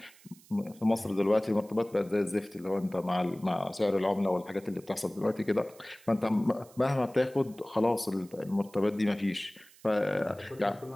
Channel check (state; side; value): noise; right; hiss, 25 dB below the sound